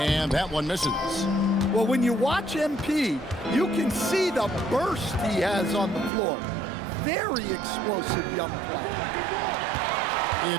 that one misses. Well, when you watch MP, you can see the burst he has on the floor. Very explosive young player.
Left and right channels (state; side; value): drops out; left; at 6.1 s